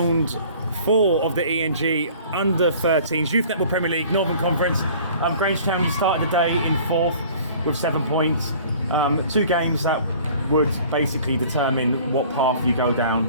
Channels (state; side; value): inverted; both; correlation -0.49